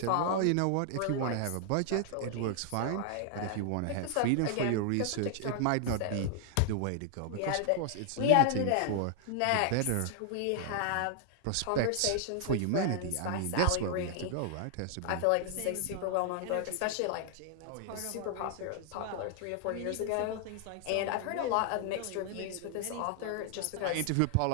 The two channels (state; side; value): different; both; correlation 0.00